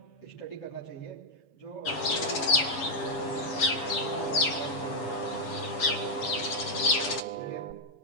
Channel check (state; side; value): late; right; 7.2 ms